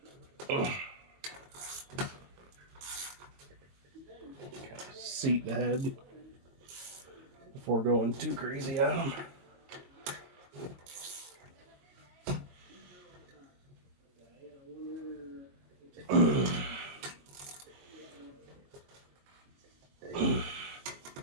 Seat the head before going too crazy on them.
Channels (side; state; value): left; late; 22 ms